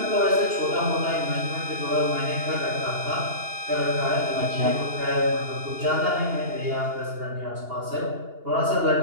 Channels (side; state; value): left; late; 2.8 ms